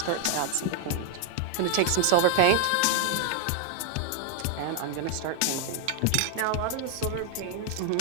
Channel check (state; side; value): different; both; correlation 0.00